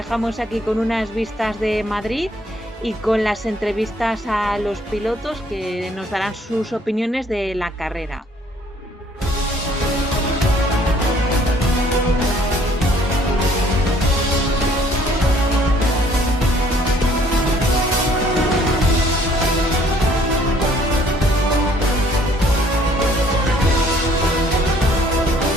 aquí con unas vistas de Madrid y con las entrevistas a los pilotos que nos darán sus opiniones de la carrera.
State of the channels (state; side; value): normal; both; correlation 0.61